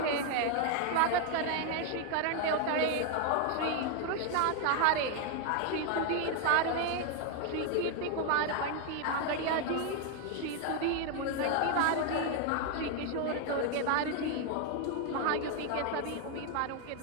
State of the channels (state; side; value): different; both; correlation 0.01